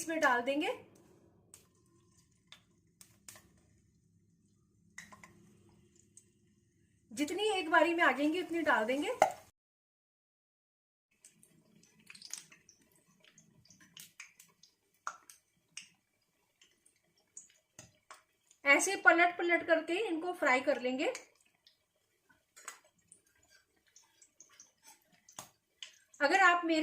डाल देंगे। जितनी एक बारी में आ जाएंगी उतनी डाल देंगे। ऐसे पलट पलट करके इनको फ्राई कर लेंगे। अगर आप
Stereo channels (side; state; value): both; identical; correlation 1.00